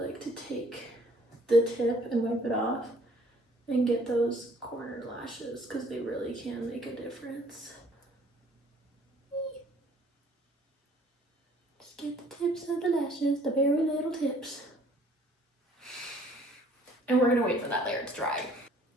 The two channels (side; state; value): both; normal; correlation 0.58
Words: to take the tip and wipe it off and get those corner lashes because they really can make a difference. Just get the tips of the lashes, the very little tips. And we're gonna wait for that layer to dry.